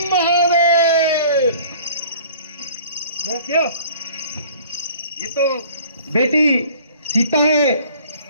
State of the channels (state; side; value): inverted; both; correlation -0.50